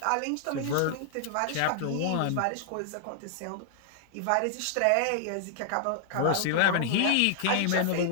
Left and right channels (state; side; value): different; both; correlation -0.01